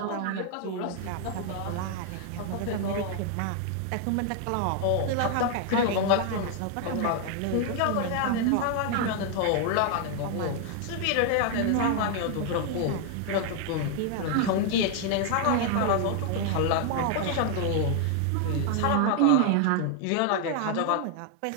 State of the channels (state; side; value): different; both; correlation 0.00